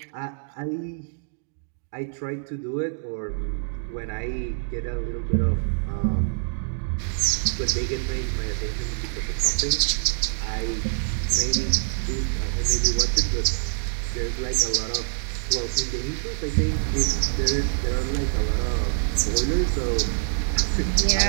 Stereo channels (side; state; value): left; silent; digital silence